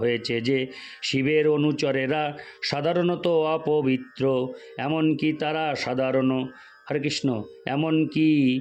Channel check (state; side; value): identical; both; correlation 1.00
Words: যে শিবের অনুচরেরা সাধারণত অপবিত্র, এমনকি